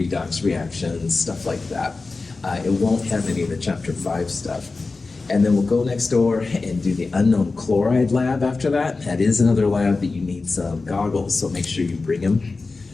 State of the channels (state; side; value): quieter; right; 3.8 dB